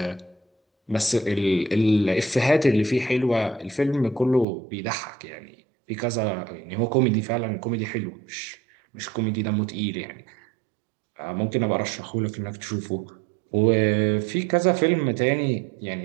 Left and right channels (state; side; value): drops out; left; at 4.5 s